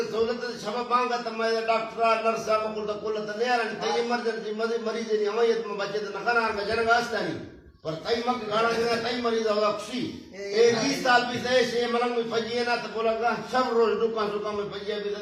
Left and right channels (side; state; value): both; identical; correlation 1.00